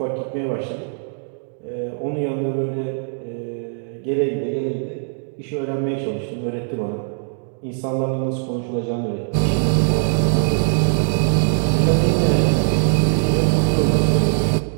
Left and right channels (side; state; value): left; silent; digital silence